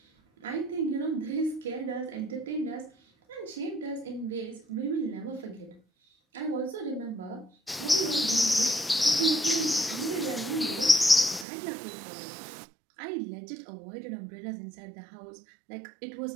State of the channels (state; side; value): drops out; left; at 11.5 s